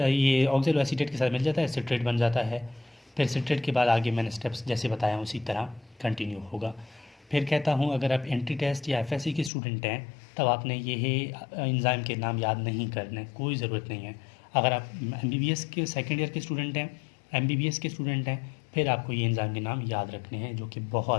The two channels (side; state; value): right; drops out; at 9.5 s